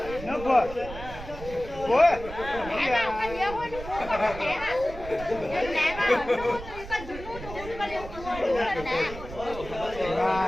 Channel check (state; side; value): noise; right; rumble, 12 dB below the sound